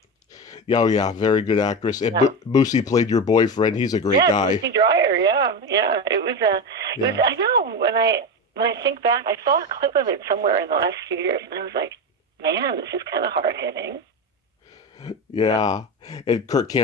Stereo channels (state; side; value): normal; both; correlation 0.18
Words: oh yeah, very good actress. And Moosey played your boyfriend. He's a great guy. Moosey Dryer, yeah. It was I know, when I think back, I saw a clip of it somewhere in the last few years, and I was like, man, this is kind of hard-hitting. Yeah. And Kirk